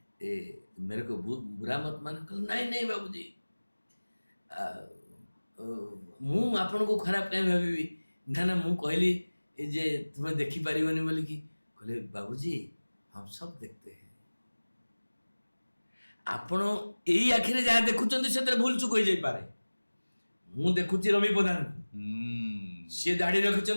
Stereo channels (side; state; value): both; inverted; correlation -1.00